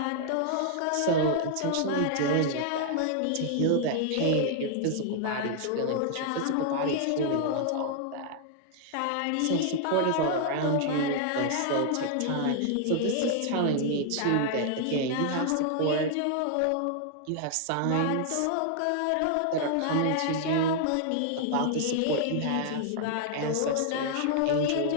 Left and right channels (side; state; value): both; different; correlation 0.00